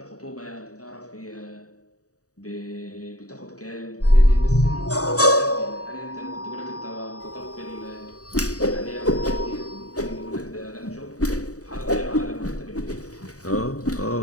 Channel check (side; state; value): right; late; 0.66 ms